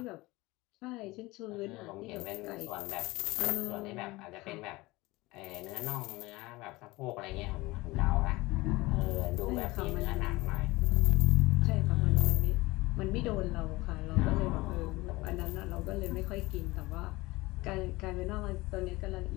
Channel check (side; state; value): right; quieter; 21.2 dB